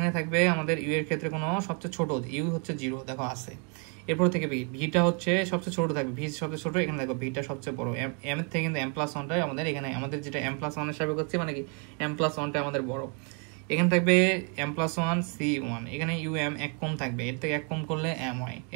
থাকবে আমাদের ইউ এর ক্ষেত্রে কোনো সবচেয়ে ছোট, ইউ হচ্ছে 0, দেখো আছে। এরপর থেকে ভিটা হচ্ছে সবচেয়ে ছোট থাকবে, ভি সবচেয়ে ছোট, এখানে দেখো ভিটা সবচেয়ে বড়। এম এর থেকে কিন্তু এম প্লাস 1টাই আমাদের এখানে, আমাদের যেটা এম প্লাস 1 এর সাপেক্ষে হচ্ছে মানে কি এম প্লাস 1টা আমাদের বড়। এখানে থাকবে এম প্লাস 1 সি 1, এখানে ইউ এম এক কম থাকবে, এর থেকে এক কম করলে এম হয়,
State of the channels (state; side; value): quieter; left; 37.5 dB